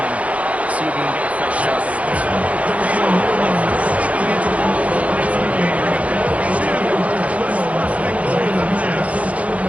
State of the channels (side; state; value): left; late; 0.066 ms